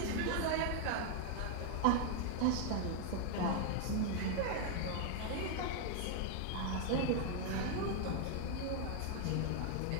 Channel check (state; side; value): different; both; correlation 0.00